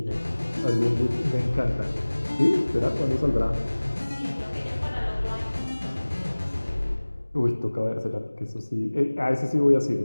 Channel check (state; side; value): inverted; both; correlation -1.00